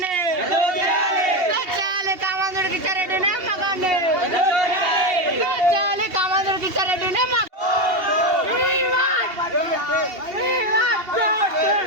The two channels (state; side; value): late; left; 2.8 ms